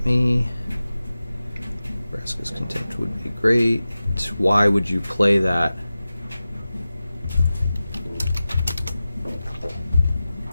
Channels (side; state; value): both; inverted; correlation -0.95